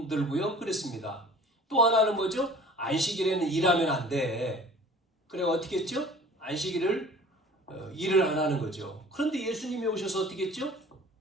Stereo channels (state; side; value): normal; both; correlation 0.46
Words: 그랬습니다. 또 하나는 뭐죠? 안식일에는 일하면 안 돼. 그래 어떻게 했죠? 안식일을 일을 안 하는 거죠. 그런데 예수님이 오셔서 어떻게 했죠?